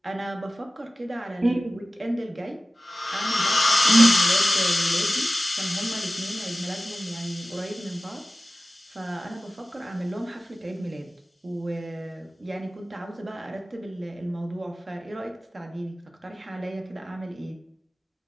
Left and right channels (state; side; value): normal; both; correlation 0.96